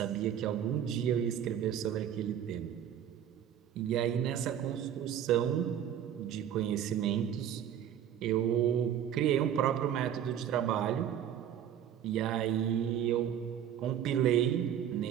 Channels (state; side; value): quieter; left; 9.8 dB